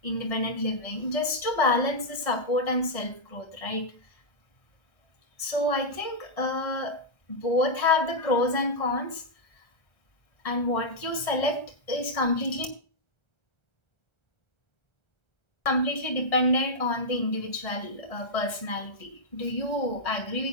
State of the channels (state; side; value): late; right; 1.3 ms